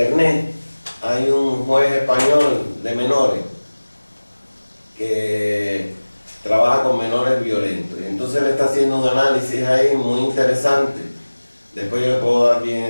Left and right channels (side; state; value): both; inverted; correlation -1.00